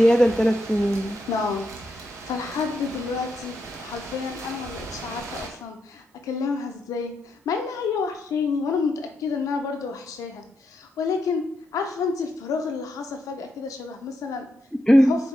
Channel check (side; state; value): both; normal; correlation 0.82